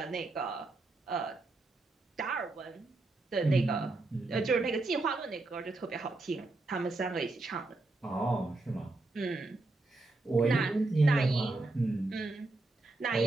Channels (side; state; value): left; quieter; 3.1 dB